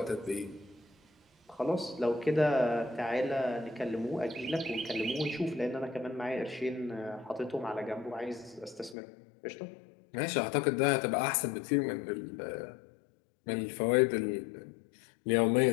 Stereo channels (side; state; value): right; drops out; at 9.0 s